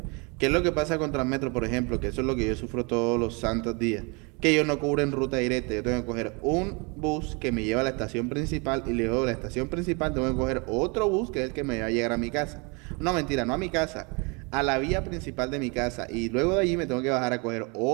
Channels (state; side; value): quieter; left; 31.0 dB